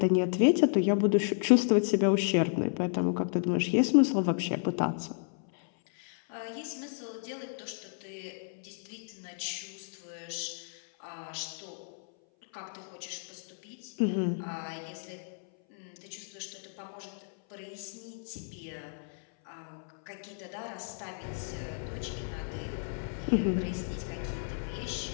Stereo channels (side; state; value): right; silent; 56 dB below the other